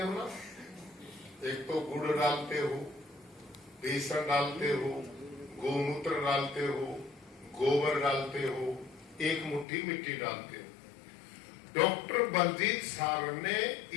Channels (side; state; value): right; drops out; at 9.7 s